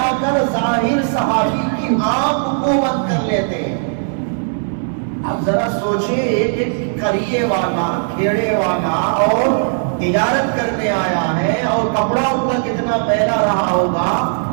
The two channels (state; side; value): silent; left; digital silence